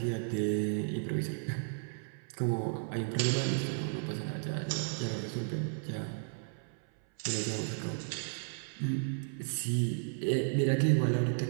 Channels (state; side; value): silent; left; 55 dB below the other